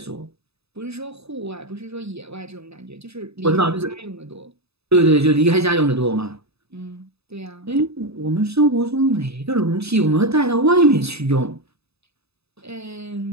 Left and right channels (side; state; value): left; late; 0.79 ms